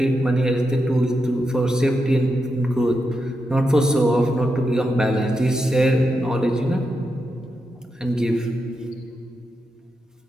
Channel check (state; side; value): normal; both; correlation 0.86